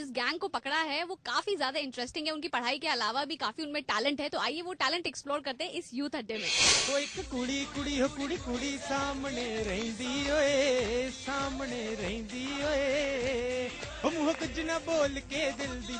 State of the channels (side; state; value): both; identical; correlation 1.00